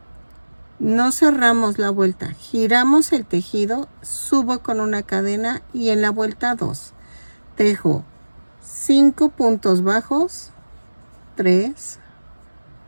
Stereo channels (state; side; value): inverted; both; correlation -1.00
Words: No cerramos la vuelta, giramos el tejido, subo con una cadena y en la vuelta 2 tejo 5 puntos bajos, 3,